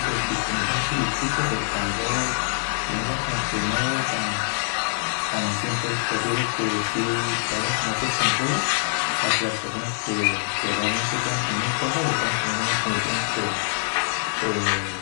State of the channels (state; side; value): silent; right; 62 dB below the other